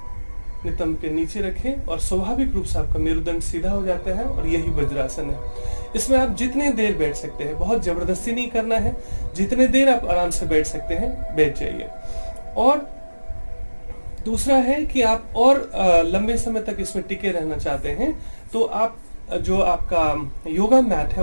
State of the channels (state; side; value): inverted; both; correlation -1.00